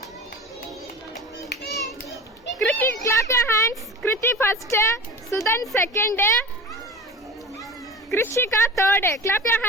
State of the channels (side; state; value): both; normal; correlation 0.34